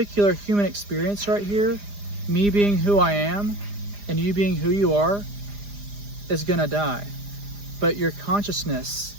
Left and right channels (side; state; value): left; late; 4.9 ms